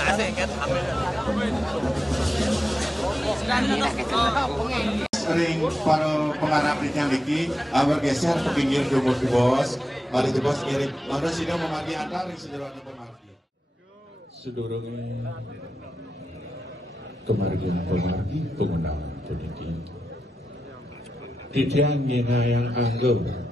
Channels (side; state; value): both; normal; correlation 0.90